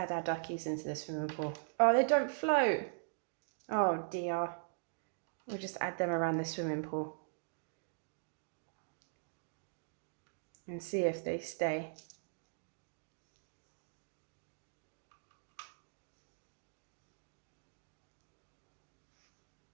our duckies into the swimming pool. Oh, they don't float. Oh dear. We'll just add them around the swimming pool. And see if they stay.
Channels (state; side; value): silent; left; digital silence